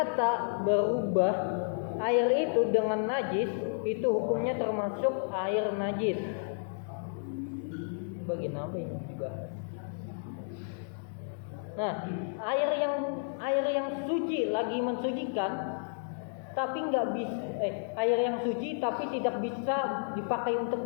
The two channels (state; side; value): silent; right; digital silence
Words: berubah air itu dengan najis, itu hukumnya termasuk air najis. Bagian apa yang dibahas? Nah, air yang suci lagi mensucikan, tapi nggak bisa air yang suci tapi tidak bisa dipakai untuk